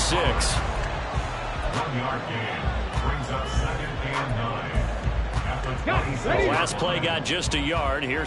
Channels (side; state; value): both; identical; correlation 1.00